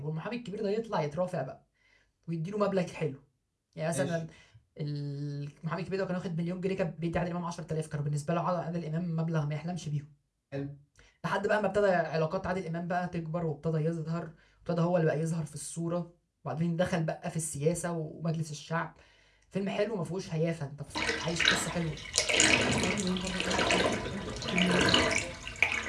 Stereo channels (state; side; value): identical; both; correlation 1.00